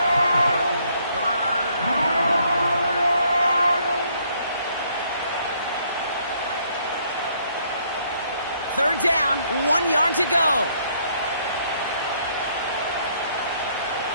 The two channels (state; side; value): inverted; both; correlation -0.67